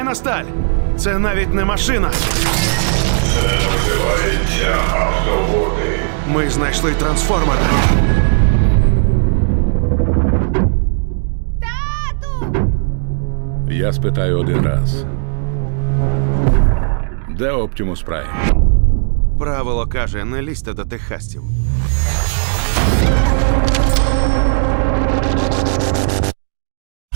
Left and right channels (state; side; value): silent; left; digital silence